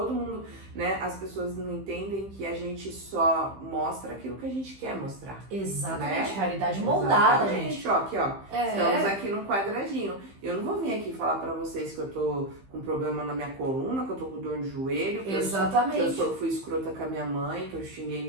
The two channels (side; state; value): left; late; 15 ms